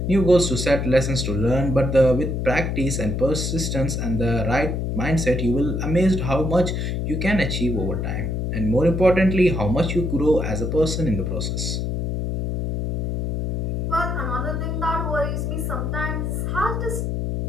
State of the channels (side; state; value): left; noise; hum, 1 dB below the sound